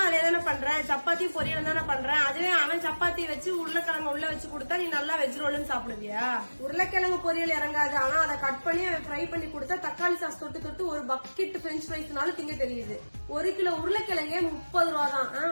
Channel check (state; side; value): inverted; both; correlation -1.00